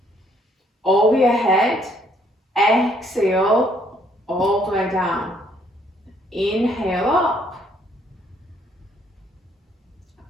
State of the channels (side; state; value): both; normal; correlation 0.67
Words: over your head. Exhale, all the way down. Inhale up,